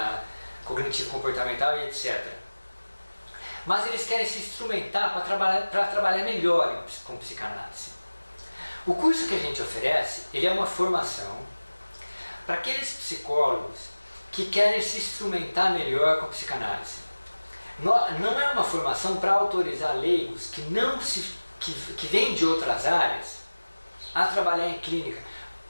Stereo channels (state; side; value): inverted; both; correlation -1.00